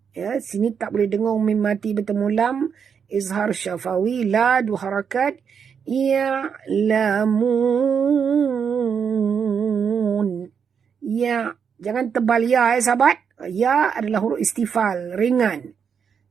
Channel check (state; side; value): quieter; left; 6.9 dB